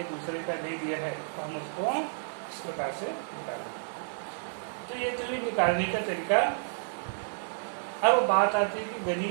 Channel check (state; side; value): silent; left; 57 dB below the other